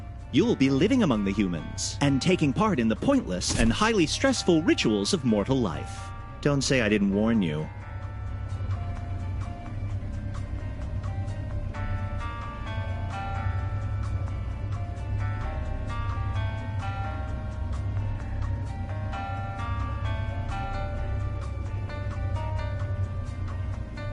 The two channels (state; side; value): identical; both; correlation 1.00